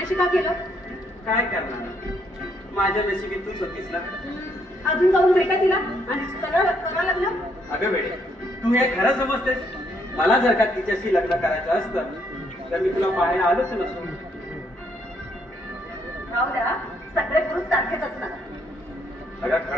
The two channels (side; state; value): both; normal; correlation 0.71